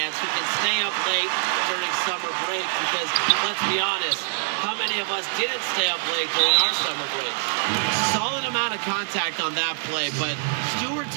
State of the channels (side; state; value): left; silent; 62 dB below the other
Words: who can stay up late during summer break, because let's be honest, how many of us didn't stay up late during our summer breaks? Solid amount of contact on that play, but